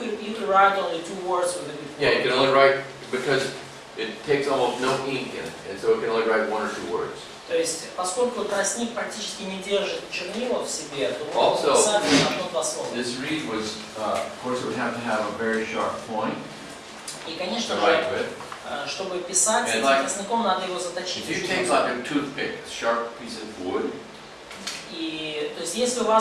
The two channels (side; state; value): both; identical; correlation 1.00